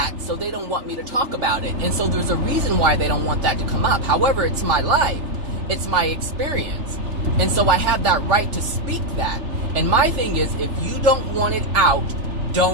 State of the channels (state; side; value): late; left; 3.4 ms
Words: so they don't want me to talk about it. And so there's a reason why they don't want that to come up. However, it's my life. It's my experience. And so I have that right to speak that. And my thing is, if you don't want it out,